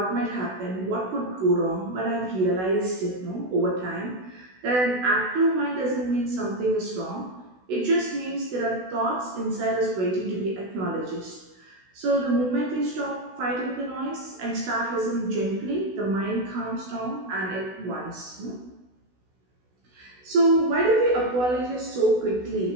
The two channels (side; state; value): left; late; 16 ms